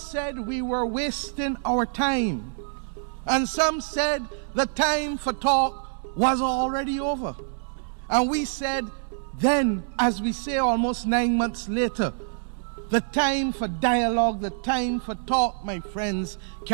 we were wasting our time, and some said the time for talk was already over. And we said then, as we say almost 9 months later, the time for dialogue, the time for talk, my friends,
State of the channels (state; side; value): silent; left; digital silence